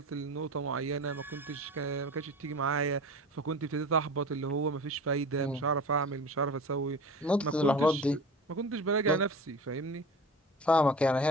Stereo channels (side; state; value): both; normal; correlation 0.36